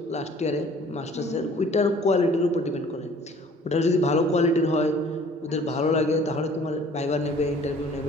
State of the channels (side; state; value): both; normal; correlation 0.53